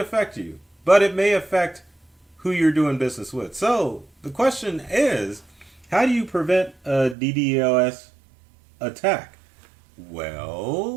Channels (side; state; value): left; drops out; at 7.2 s